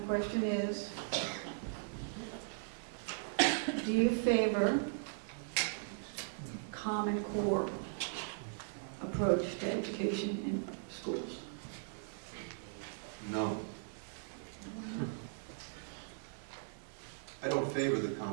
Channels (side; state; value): left; silent; 52 dB below the other